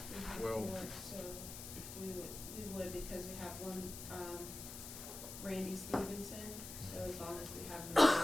Well- So we would, because we have one, Randy Stevenson, so as long as we have,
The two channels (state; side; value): noise; left; hiss, 10 dB below the sound